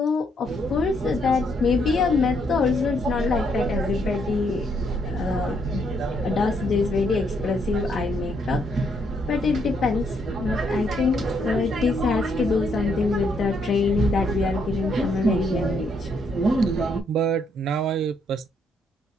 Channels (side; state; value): both; normal; correlation 0.73